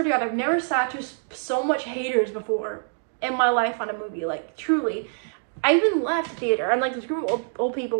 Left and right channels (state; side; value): silent; left; digital silence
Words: to God, I've never sat to so much haters before in my life on a movie, truly. I even left the theater, and this group of old